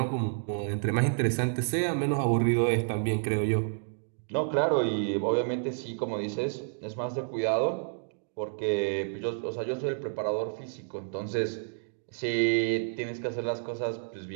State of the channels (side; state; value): left; silent; digital silence